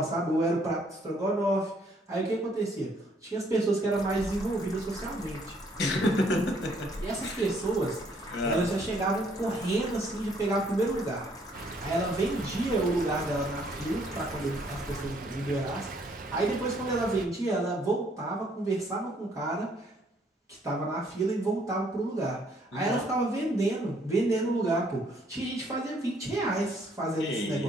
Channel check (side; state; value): both; normal; correlation 0.66